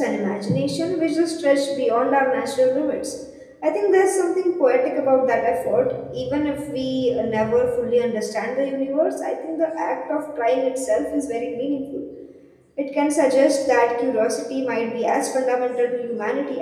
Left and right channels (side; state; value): both; identical; correlation 1.00